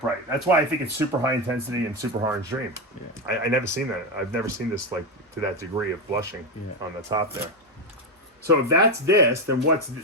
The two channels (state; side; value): normal; both; correlation 0.11